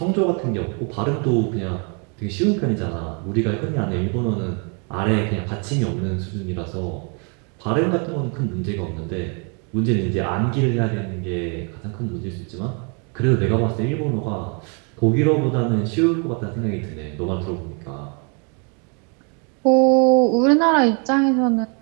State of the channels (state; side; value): quieter; left; 36.6 dB